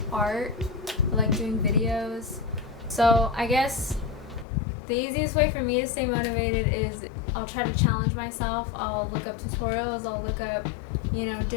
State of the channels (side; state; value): right; drops out; at 4.5 s